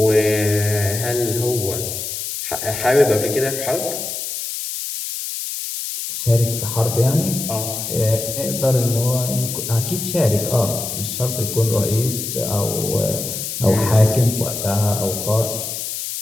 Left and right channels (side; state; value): left; noise; hiss, 5 dB below the sound